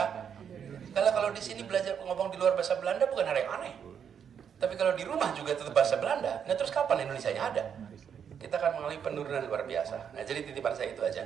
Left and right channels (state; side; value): quieter; left; 7.8 dB